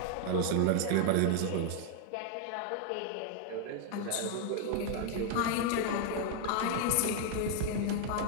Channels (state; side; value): different; both; correlation 0.00